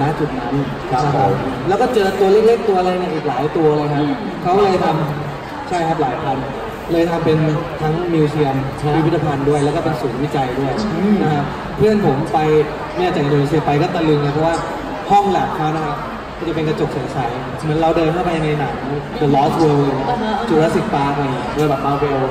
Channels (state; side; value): identical; both; correlation 1.00